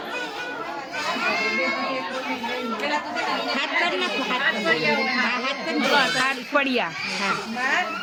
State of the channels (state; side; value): identical; both; correlation 1.00